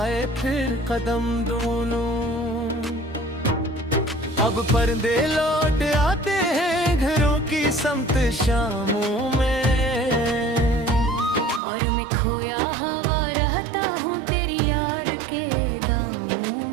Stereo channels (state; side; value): drops out; left; at 11.6 s